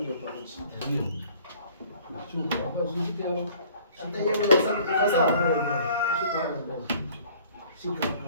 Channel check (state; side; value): inverted; both; correlation -0.53